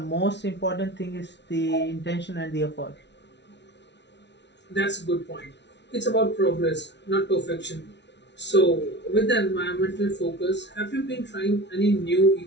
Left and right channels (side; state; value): right; late; 0.51 ms